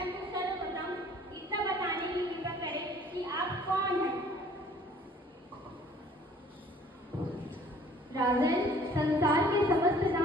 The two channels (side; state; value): both; normal; correlation 0.54